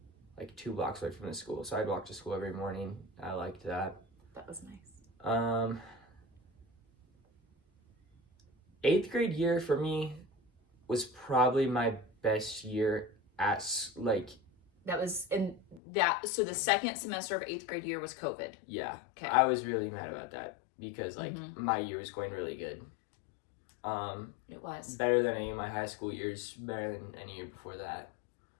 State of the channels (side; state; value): right; drops out; at 15.8 s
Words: 2 blocks away from the school, so I'd walk to school every morning. I liked that. That was nice. 8th grade year for me was probably my best year at that was in that. So the second semester of 8th grade year was COVID. Yeah. Okay. I was really mad about that because my year was going really good. It was better than any of my high school years, better than any year before that.